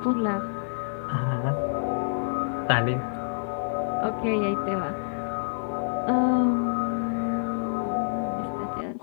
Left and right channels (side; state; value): right; silent; 60 dB below the other